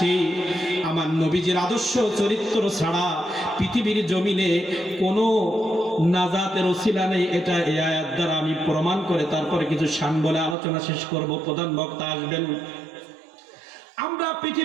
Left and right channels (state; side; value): drops out; left; at 10.6 s